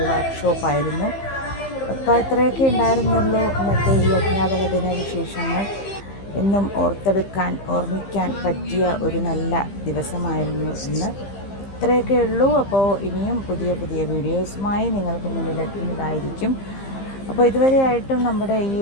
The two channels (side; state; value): right; late; 15 ms